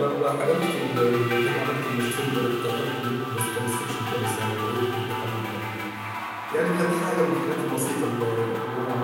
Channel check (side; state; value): both; identical; correlation 1.00